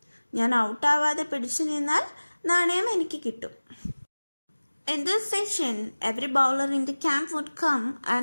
ഞാൻ ഔട്ടാവാതെ പിടിച്ചു നിന്നാൽ നാണയം എനിക്ക് കിട്ടും. In this session, every bowler in the camp would come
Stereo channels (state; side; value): inverted; both; correlation -1.00